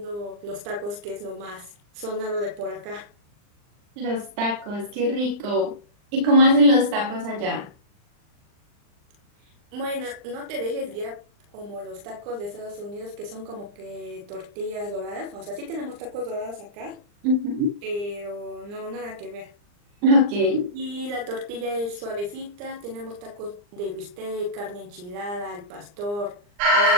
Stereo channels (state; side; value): late; left; 39 ms